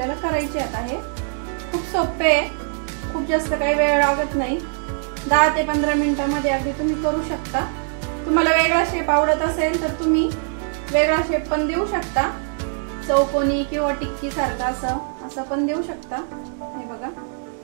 करायचे आता। हे खूप सोपे आहे, खूप जास्त काही वेळ लागत नाही, 10 ते 15 मिनिटांमध्ये अगदी तुम्ही करू शकता। तुम्हाला वेगळा शेप आवडत असेल तर तुम्ही वेगळा शेप पण देऊ शकता, चौकोनी किंवा टिक्की सारखा असं पण देऊ शकता। हे बघा,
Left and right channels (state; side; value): silent; left; 64 dB below the other